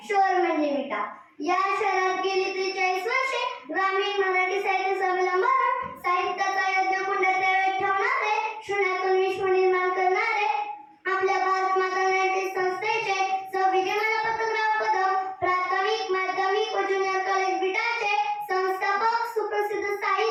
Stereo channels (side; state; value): both; identical; correlation 1.00